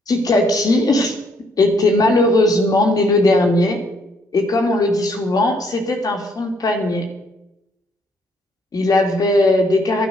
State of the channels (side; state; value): both; normal; correlation 0.69